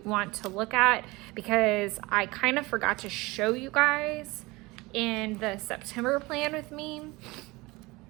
want to look at, because I kind of forgot to show you guys in the September plan with me,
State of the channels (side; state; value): left; quieter; 22.5 dB